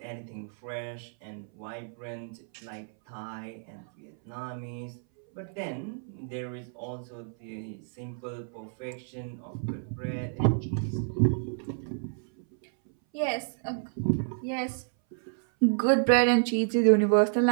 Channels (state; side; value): silent; left; 58 dB below the other